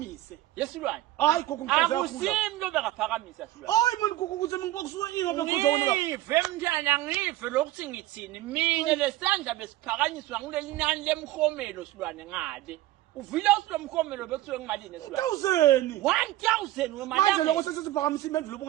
yesilwane hayi gogo ngikaze akusimlo bekaphakamisa silwane hayi manje gogo ukuthi ngikusuka ini ngoba ngikhoza wona lapha ngive mntana ngive lokuthi ngithini mina lesandla besiphakanyiswa kuleli nani lemkhomelo silwane ngale uvile usilomkhomelo bekuthiwe ngimalini esilwane 1000 wemali manje lokho sesiphakamisa impendulo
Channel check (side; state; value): left; quieter; 15.6 dB